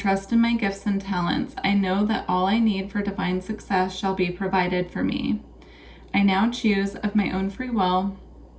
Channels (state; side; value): identical; both; correlation 1.00